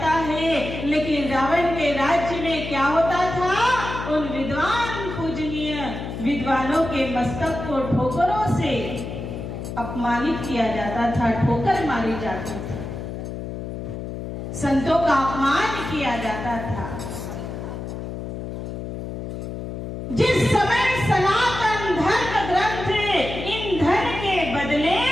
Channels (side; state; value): left; noise; hum, 7 dB below the sound